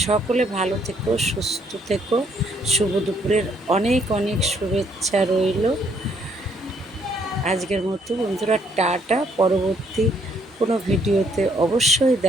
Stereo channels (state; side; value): normal; both; correlation 0.69